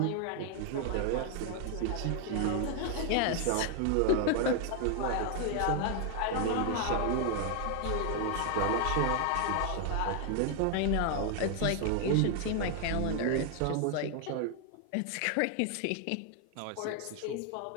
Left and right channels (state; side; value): different; both; correlation 0.00